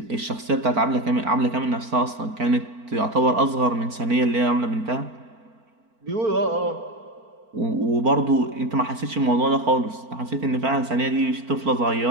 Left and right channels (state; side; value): late; left; 4.5 ms